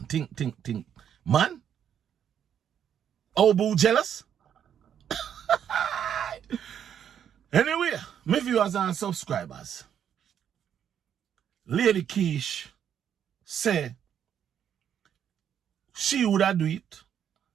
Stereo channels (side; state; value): left; quieter; 9.0 dB